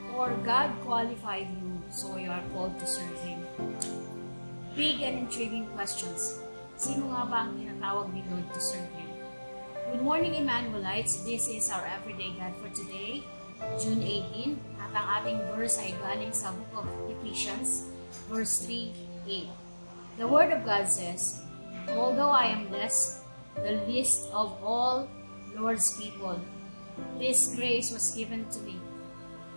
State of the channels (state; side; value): inverted; both; correlation -1.00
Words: Or God qualified you so you are called to serve Him? Big and intriguing questions. Sino nga ba ang tinatawag ni Lord to serve Him? Good morning, Emmanuelites. This is our Everyday God for today, June 18. At ang ating verse ay galing sa book of Ephesians, verse 3:8. The Word of God says, although I am less, the least of all Lord's people, this grace was given to me